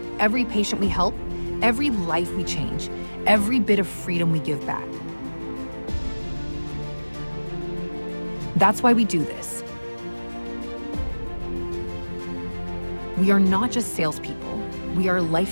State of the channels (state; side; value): inverted; both; correlation -1.00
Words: Every patient we help, every life we change, every bit of freedom we give back. That's why we do this. We are not just salespeople, we are